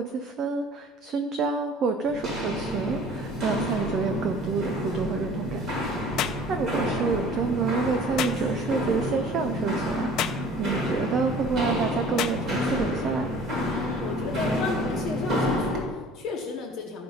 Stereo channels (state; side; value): normal; both; correlation 0.48